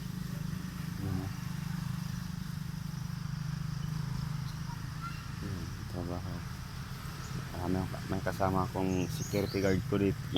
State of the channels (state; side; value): identical; both; correlation 1.00